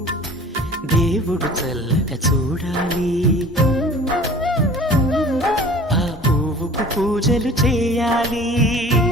దేవుడు చల్లగా చూడాలి. ఆ పువ్వుకు పూజలు చేయాలి.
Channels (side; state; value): both; normal; correlation 0.46